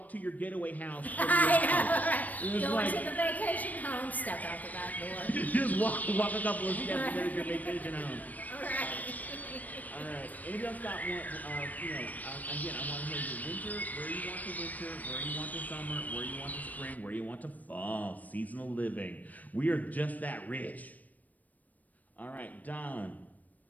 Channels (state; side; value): late; right; 0.078 ms